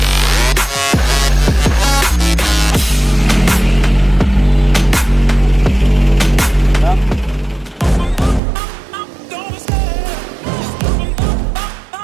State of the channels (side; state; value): left; drops out; at 8.4 s